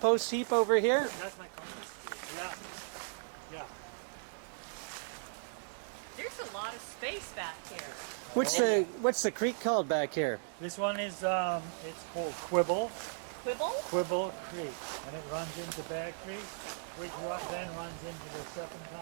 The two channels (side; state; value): left; silent; digital silence